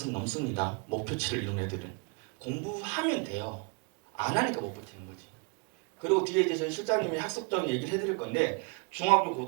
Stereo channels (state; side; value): quieter; left; 31.7 dB